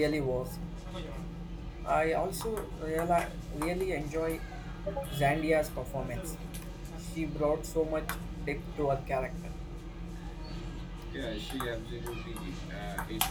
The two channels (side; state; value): both; identical; correlation 1.00